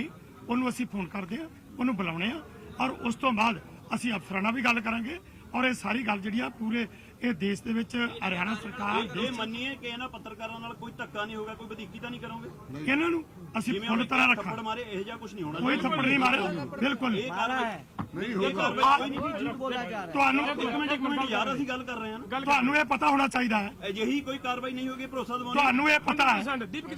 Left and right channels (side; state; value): both; identical; correlation 1.00